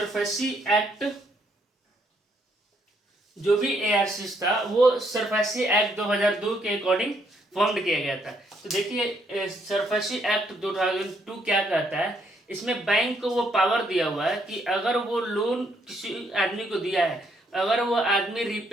एक्ट, जो भी एआरसी था वो सरफेसी एक्ट 2002 के अकॉर्डिंग फॉर्म किया गया था। तो देखिए सरफेसी एक्ट 2002 क्या कहता है, इसमें बैंक को वो पावर दिया हुआ है कि अगर वो लोन किसी आदमी को दिया है, अगर वो आदमी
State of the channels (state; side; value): normal; both; correlation 0.72